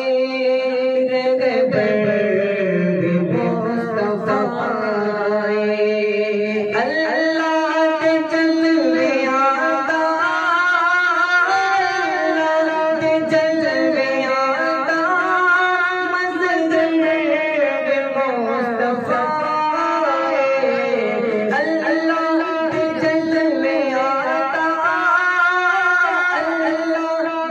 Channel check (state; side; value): identical; both; correlation 1.00